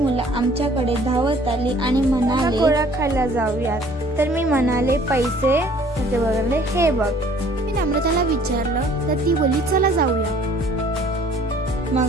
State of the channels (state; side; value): normal; both; correlation 0.55